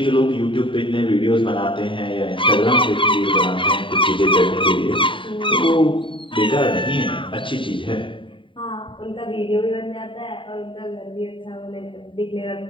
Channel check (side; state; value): right; late; 0.25 ms